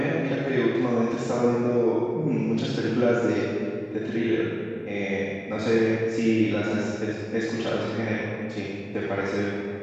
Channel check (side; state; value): both; identical; correlation 1.00